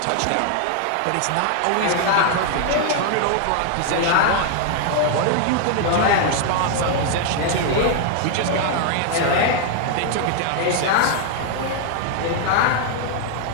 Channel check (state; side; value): different; both; correlation 0.00